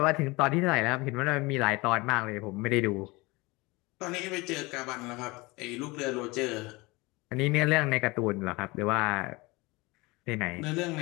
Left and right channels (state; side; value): quieter; right; 23.6 dB